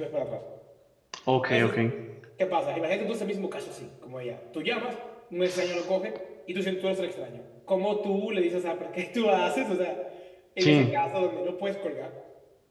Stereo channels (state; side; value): identical; both; correlation 1.00